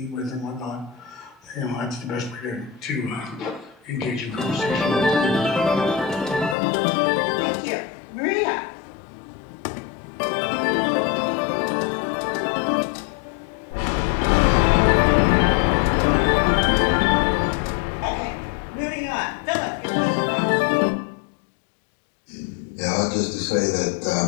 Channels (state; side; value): drops out; right; at 6.6 s